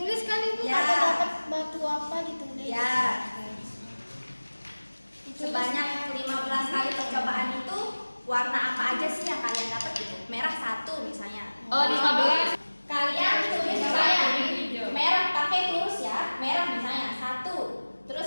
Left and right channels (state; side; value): inverted; both; correlation -1.00